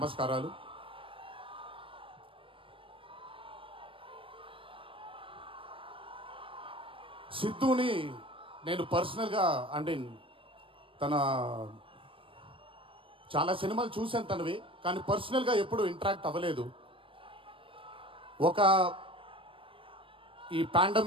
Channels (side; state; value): left; late; 0.25 ms